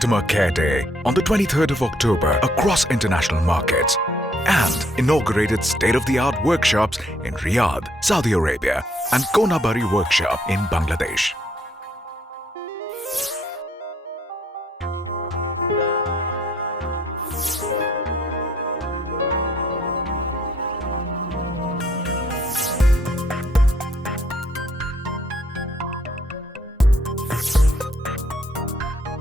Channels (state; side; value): normal; both; correlation 0.67